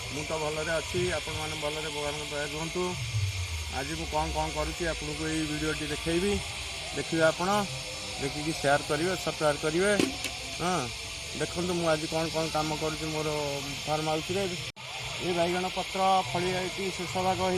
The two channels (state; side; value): identical; both; correlation 1.00